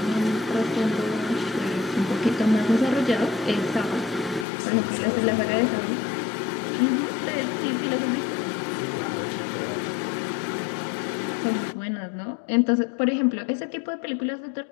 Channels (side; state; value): right; drops out; at 4.5 s